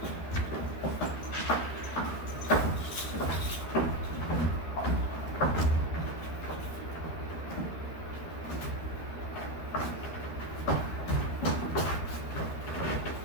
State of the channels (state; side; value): late; right; 13 ms